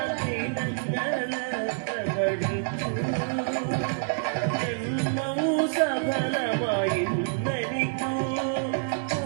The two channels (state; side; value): silent; left; 60 dB below the other